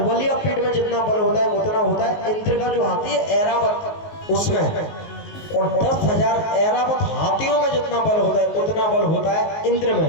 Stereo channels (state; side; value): late; right; 19 ms